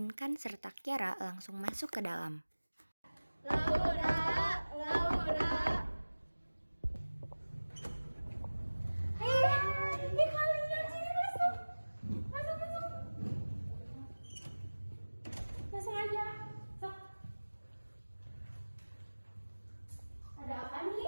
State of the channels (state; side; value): inverted; both; correlation -1.00